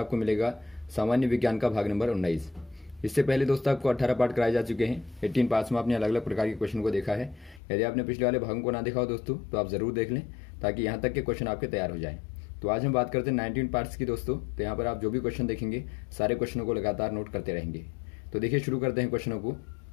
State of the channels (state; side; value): drops out; right; at 7.6 s